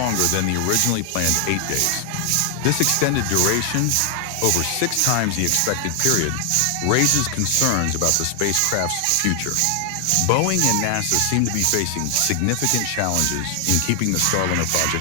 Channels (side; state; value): both; different; correlation 0.00